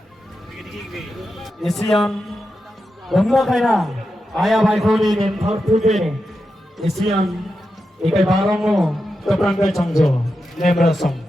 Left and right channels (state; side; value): normal; both; correlation 0.88